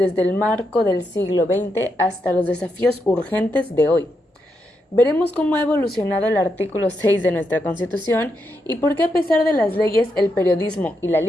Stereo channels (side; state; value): both; normal; correlation 0.83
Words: el marco del siglo XX hasta los desafíos urgentes de hoy. Veremos cómo ha evolucionado el artículo 6 de nuestra Constitución y por qué a pesar de las leyes el periodismo y la